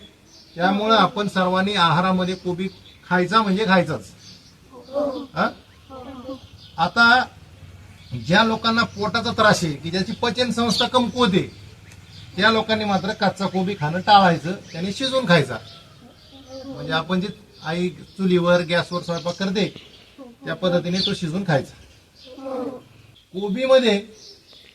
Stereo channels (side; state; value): both; identical; correlation 1.00